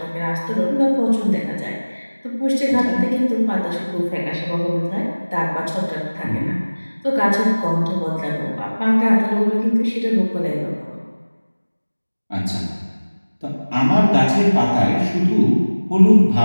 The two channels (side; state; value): both; inverted; correlation -1.00